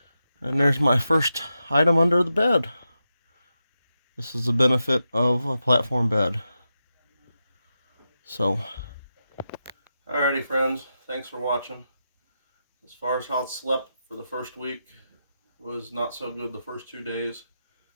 And there's my first item under the bed. This is the benefit of a platform bed. So, alrighty friends, thanks for watching. As far as how it slept for the first week, it was not so good the first 2 days,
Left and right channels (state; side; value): inverted; both; correlation -0.89